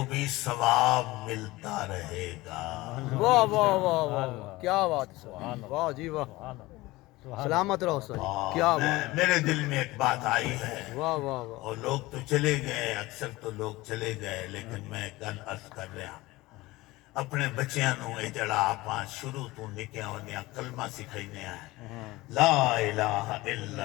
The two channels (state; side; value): quieter; right; 19.8 dB